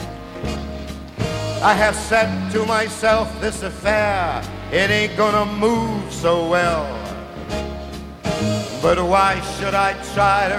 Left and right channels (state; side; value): identical; both; correlation 1.00